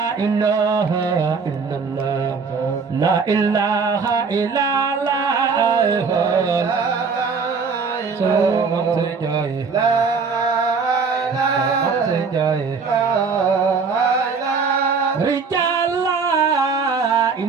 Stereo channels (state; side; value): quieter; left; 5.1 dB